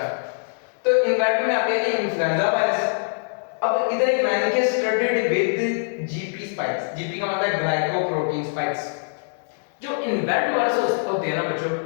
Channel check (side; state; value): right; silent; 63 dB below the other